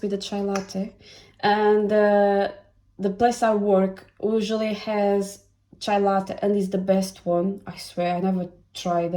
with the chai latte, and the place I work usually has chai latte and is the best one. I swear, I never tried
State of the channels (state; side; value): identical; both; correlation 1.00